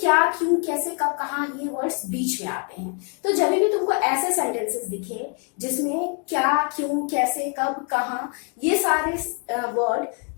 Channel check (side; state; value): right; quieter; 38.3 dB